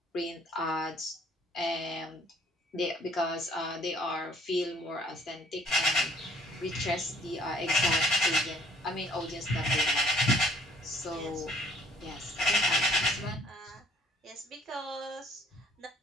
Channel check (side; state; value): both; normal; correlation 0.59